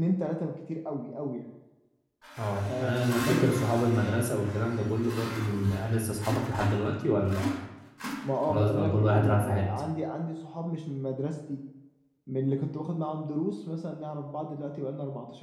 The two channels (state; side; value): identical; both; correlation 1.00